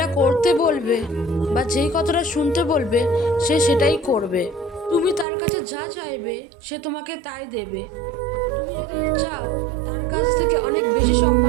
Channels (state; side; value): drops out; left; at 5.2 s